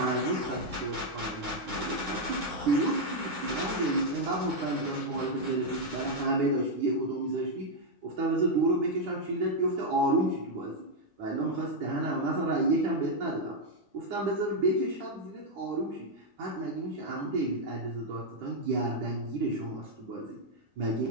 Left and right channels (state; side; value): late; left; 10 ms